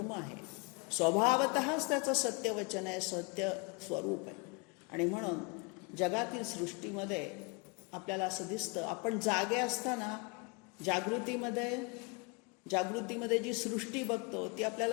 आहे. स्वभावतःच त्याचं सत्यवचन आहे, सत्य स्वरूप आहे. आणि म्हणून जगातील सृष्टीमध्ये आपल्याला असं दिसतं, आपण जागे असताना जागृतीमध्ये जी सृष्टी बघतो ती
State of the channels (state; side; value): quieter; right; 30.4 dB